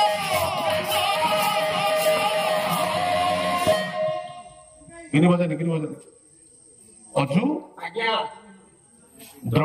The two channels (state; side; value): identical; both; correlation 1.00